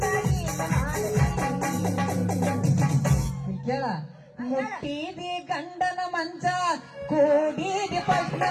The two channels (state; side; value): identical; both; correlation 1.00